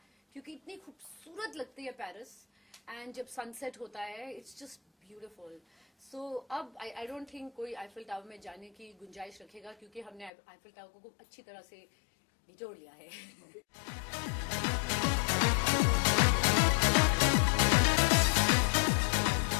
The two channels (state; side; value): drops out; right; at 10.3 s